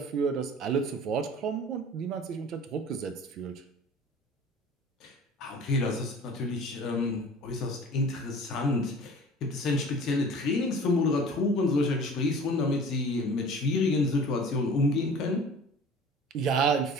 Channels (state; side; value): normal; both; correlation 0.44